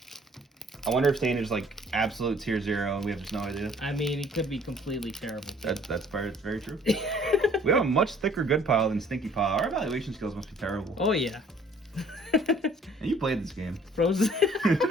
I wonder if stain is like absolute tier 0 and we have just no idea. I mean, it could be completely terrible. That's very true. We have a much thicker good pile than Stinky Pile. Our evaluation skills must be terrible. Oh yeah. And you played this game. Frozen.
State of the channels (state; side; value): normal; both; correlation 0.56